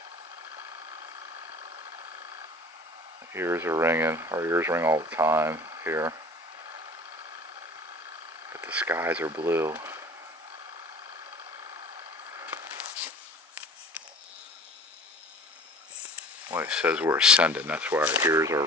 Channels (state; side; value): normal; both; correlation 0.42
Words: Ears are ringing. Our ears ring all the time here. But the skies are blue. Well, it says we're ascending, that's why our ears